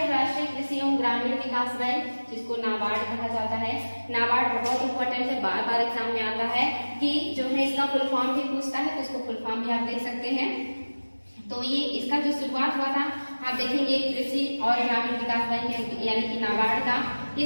राष्ट्रीय कृषि एवं ग्रामीण विकास बैंक, जिसको नाबार्ड कहा जाता है। नाबार्ड बहुत इंपॉर्टेंट है, बार बार एग्जाम में आता है कि जो है इसका फुल फॉर्म भी पूछता है, तो इसको फुल फॉर्म भी आप देख सकते हैं। तो ये इसका जो शुरुआत हुआ था आप देखेंगे कृषि और ग्रामीण विकास बैंक यानी कि नाबार्ड का,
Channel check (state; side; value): inverted; both; correlation -1.00